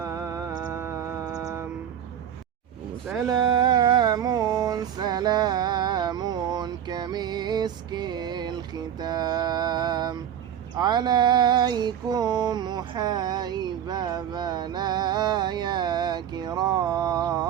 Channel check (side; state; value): left; quieter; 9.6 dB